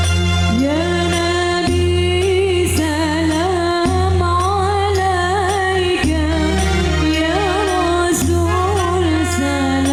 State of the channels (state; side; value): identical; both; correlation 1.00